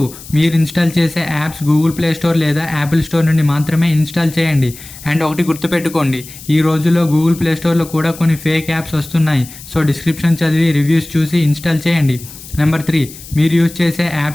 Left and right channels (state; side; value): noise; left; hiss, 16 dB below the sound